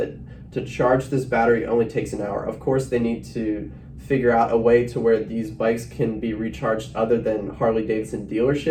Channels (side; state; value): both; identical; correlation 1.00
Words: To charge this battery only takes an hour. Of course, they need to figure out a way to where these bikes can be recharged other than Harley Davidson